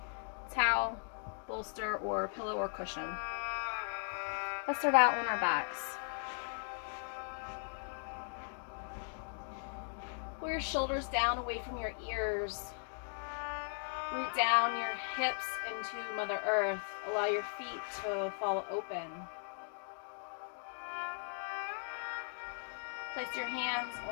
towel, bolster, or pillow or cushion. Let's start out on our backs. Pull your shoulders down away from your ears. Root down your hips into Mother Earth. Allow your feet to fall open. Place your hands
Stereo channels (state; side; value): silent; right; 52 dB below the other